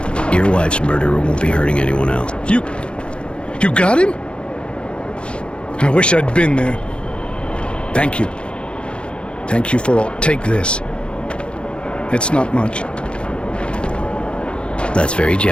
Your wife's murderer won't be hurting anyone else. You got him? I wish I'd been there. Thank you. Thank you for all. Take this. It's not much. That's very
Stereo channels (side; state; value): right; late; 0.056 ms